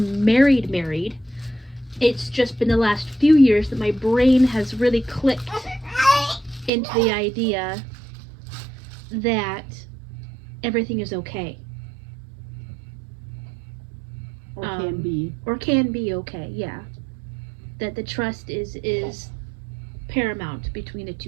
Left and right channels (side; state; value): left; drops out; at 6.7 s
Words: married, it's just been the last few years that my brain has really clicked into the idea that everything is okay. Or can be. Or can be okay, yeah. That the trust is paramount between the